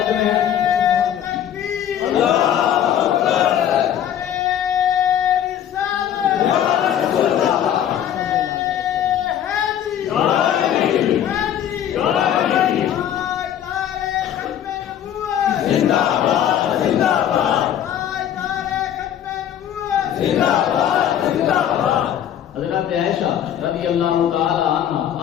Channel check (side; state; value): right; quieter; 10.1 dB